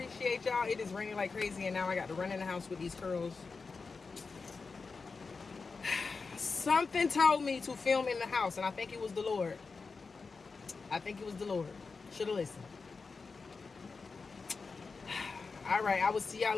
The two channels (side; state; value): right; quieter; 4.5 dB